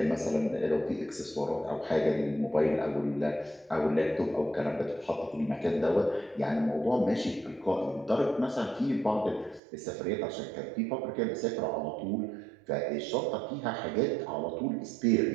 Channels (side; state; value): left; drops out; at 9.6 s